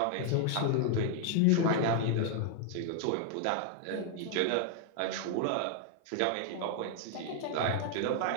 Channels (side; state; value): both; different; correlation 0.00